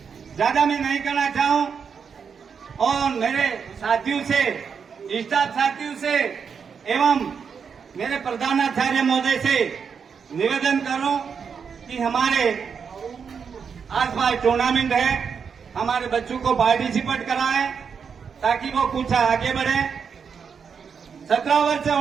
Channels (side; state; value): left; quieter; 6.4 dB